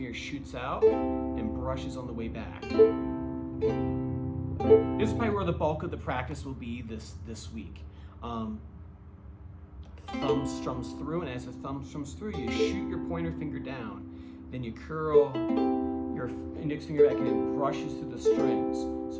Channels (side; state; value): both; identical; correlation 1.00